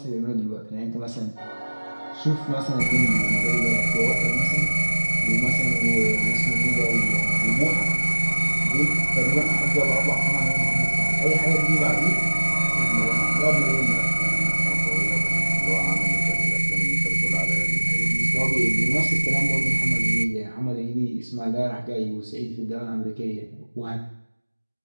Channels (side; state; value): both; inverted; correlation -1.00